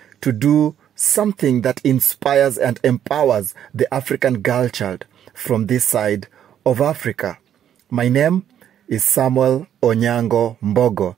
to do something that inspires and empowers the African girl child from this side of Africa. My name is Samuel Onyango Mbogo.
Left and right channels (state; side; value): quieter; left; 10.0 dB